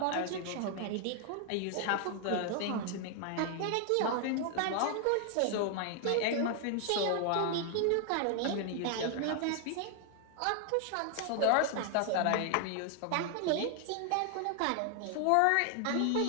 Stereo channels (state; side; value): different; both; correlation 0.00